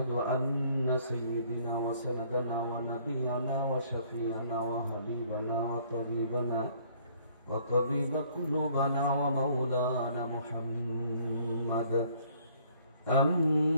أن سيدنا وسندنا ونبينا وشفيعنا وحبيبنا وطبيب قلوبنا ومولانا محمد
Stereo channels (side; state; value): both; inverted; correlation -0.61